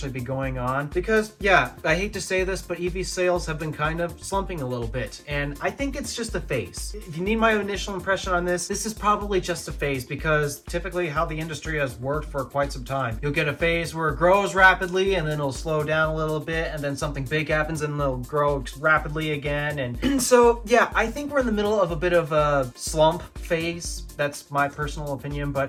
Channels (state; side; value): identical; both; correlation 1.00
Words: be going on. Because, yeah, I hate to say this, but EV sales have been kind of slumping a little bit, and I think it's just a phase. If you need my initial impression on this is probably just a phase, because typically how the industry has worked for quite some time. You'll get a phase where it grows rapidly and then it'll slow down a little bit, and then something big happens and it'll grow rapidly again. And so, yeah, I think we're in the middle of a bit of a slump phase. That's my personal opinion,